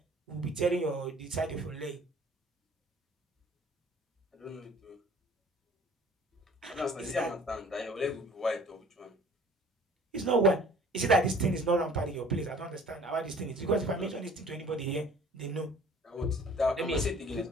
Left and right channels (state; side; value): normal; both; correlation 0.50